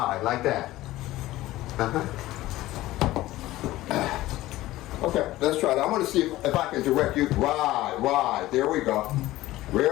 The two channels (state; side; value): quieter; right; 16.6 dB